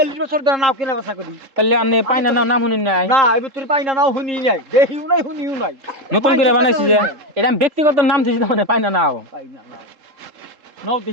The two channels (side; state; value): left; late; 3.7 ms